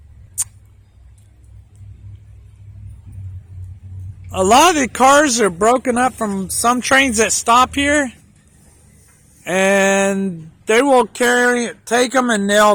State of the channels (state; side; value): identical; both; correlation 1.00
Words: the cars are broken up from some trains that stop here, and they will take them, and